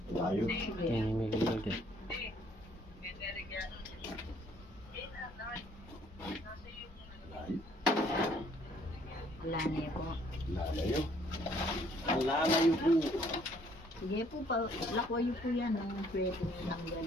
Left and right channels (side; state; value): both; normal; correlation 0.63